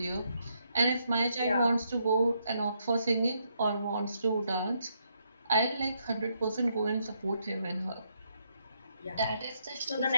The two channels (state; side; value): inverted; both; correlation -0.77